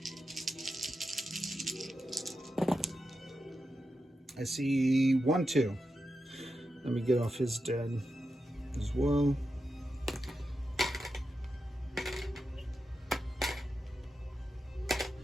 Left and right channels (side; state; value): both; normal; correlation 0.89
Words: I see 1, 2. Let me get off his dead as well.